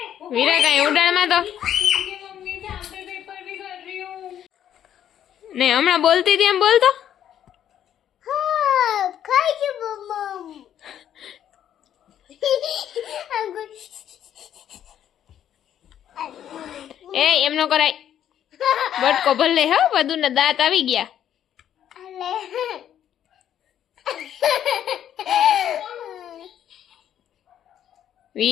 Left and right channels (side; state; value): right; quieter; 10.3 dB